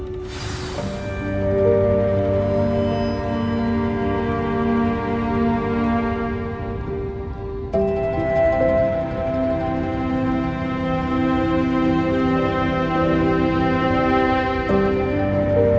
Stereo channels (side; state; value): both; identical; correlation 1.00